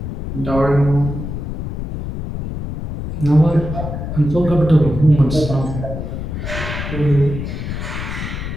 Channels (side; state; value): left; noise; rumble, 5 dB below the sound